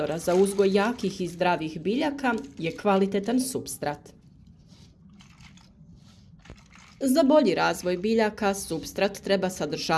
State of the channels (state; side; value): identical; both; correlation 1.00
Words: za uzgoj jakih i zdravih biljaka je kvalitetan supstrat. Za bolji razvoj biljaka supstrat treba